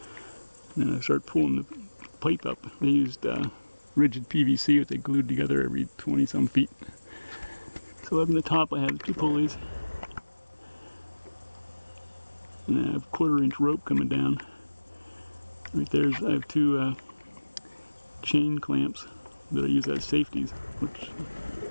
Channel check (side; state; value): both; inverted; correlation -1.00